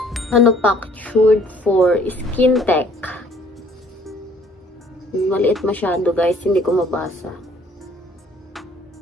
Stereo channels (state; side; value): normal; both; correlation 0.58